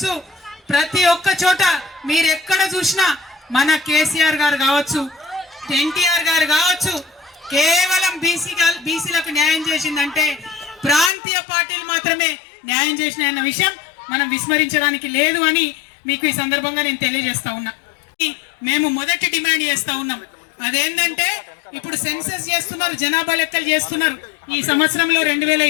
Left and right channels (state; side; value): drops out; right; at 11.1 s